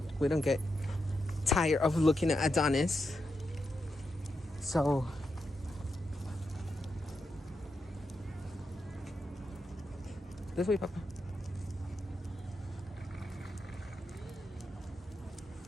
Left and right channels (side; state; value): both; normal; correlation 0.85